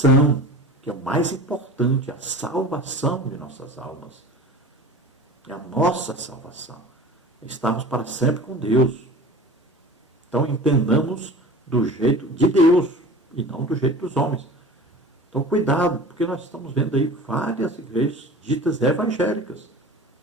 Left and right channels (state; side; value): normal; both; correlation 0.38